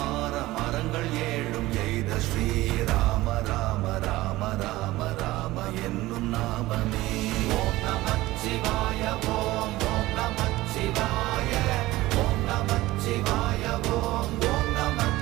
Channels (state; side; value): quieter; left; 18.0 dB